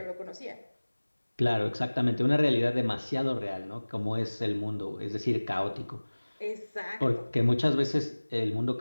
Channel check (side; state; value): both; inverted; correlation -1.00